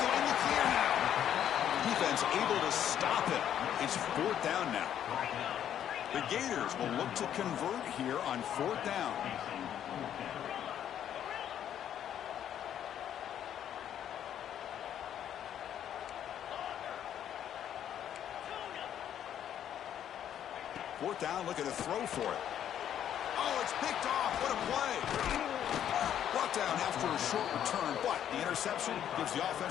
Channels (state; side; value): quieter; right; 10.1 dB